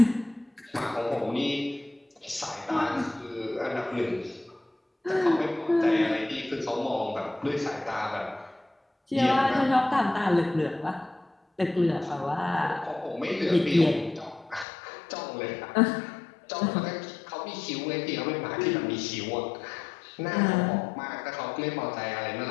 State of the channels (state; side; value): drops out; right; at 14.7 s